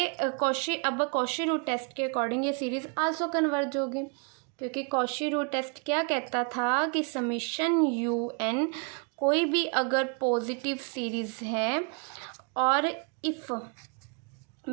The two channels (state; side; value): quieter; left; 36.4 dB